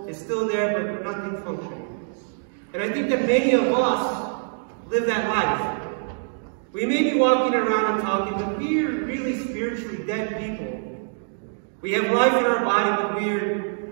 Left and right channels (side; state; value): left; silent; digital silence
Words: is still there, but nothing functioning. And I think that many of us live that life. We may be walking around and talking, but we are really spiritually dead people. We have life in our body, but we are